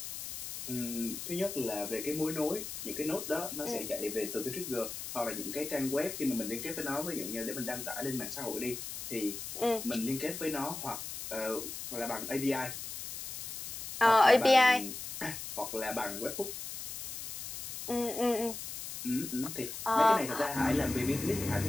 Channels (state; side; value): noise; left; hiss, 7 dB below the sound